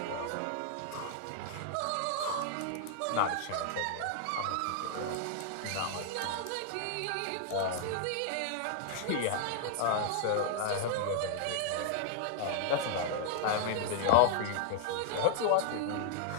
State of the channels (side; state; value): both; different; correlation 0.00